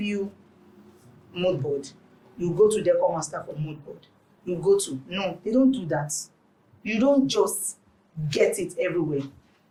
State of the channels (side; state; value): both; identical; correlation 1.00